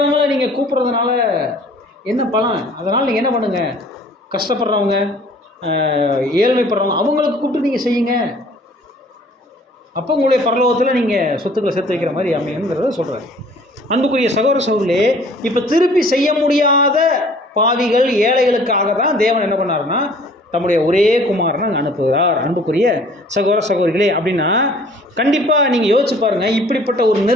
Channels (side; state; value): both; normal; correlation 0.53